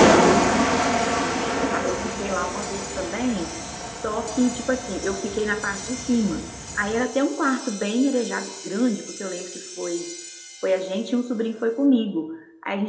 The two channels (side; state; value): both; identical; correlation 1.00